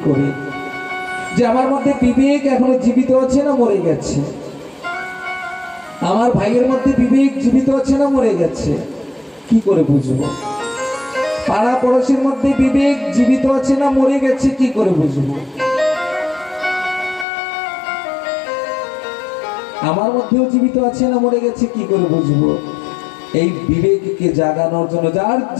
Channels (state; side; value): drops out; right; at 17.2 s